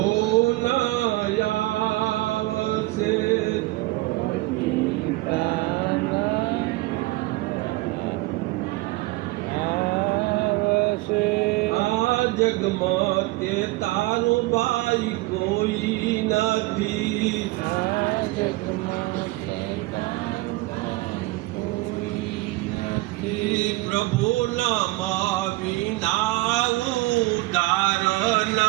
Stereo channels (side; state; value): left; quieter; 20.7 dB